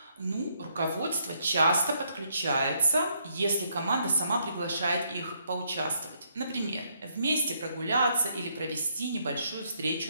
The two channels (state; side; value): inverted; both; correlation -0.73